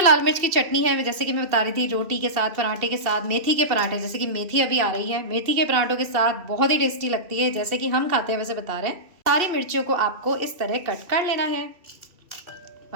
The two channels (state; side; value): late; left; 2.7 ms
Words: लाल मिर्च की चटनी है, जैसे कि मैं बता रही थी, रोटी के साथ, पराठे के साथ, मेथी के पराठे, जैसे कि मेथी अभी आ रही है, मेथी के पराठों के साथ बहुत ही टेस्टी लगती है, जैसे कि हम खाते हैं वैसे बता रहे हैं। सारी मिर्चियों को आपको इस तरह कट कर लेना है।